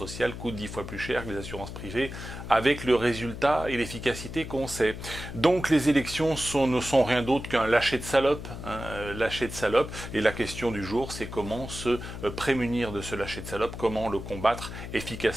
coûtent 10 fois plus cher que les assurances privées, avec le résultat et l'efficacité qu'on sait. Donc les élections ne sont rien d'autre qu'un lâcher de salope, lâcher de salope, et la question du jour, c'est comment se prémunir de ce lâcher de salope, comment le combattre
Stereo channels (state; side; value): noise; left; hum, 9 dB below the sound